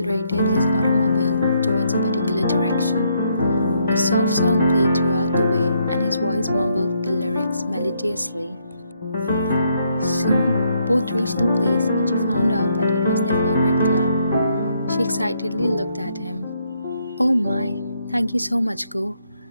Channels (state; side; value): inverted; both; correlation -0.74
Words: his automobile towards a particular direction. A soft song played throughout the way, and his voice mumbled the lyrics melodiously. Soon, both reached the place, and she found out that it was their favorite club. She excitedly looked at him. Oh my, thank you so much, Go.